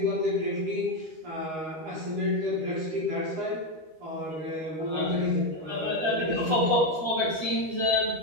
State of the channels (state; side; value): late; left; 13 ms